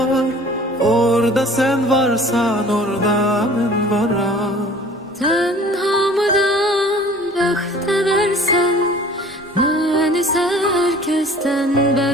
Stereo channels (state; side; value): normal; both; correlation 0.48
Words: orada sen varsan orada ben varım. Tenhamıdan bəxt versen, ben ise herkesten